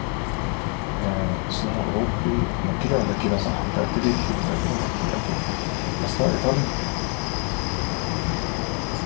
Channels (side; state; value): right; quieter; 39.2 dB